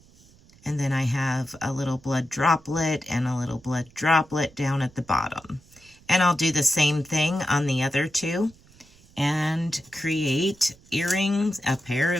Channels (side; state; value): right; noise; rumble, 27 dB below the sound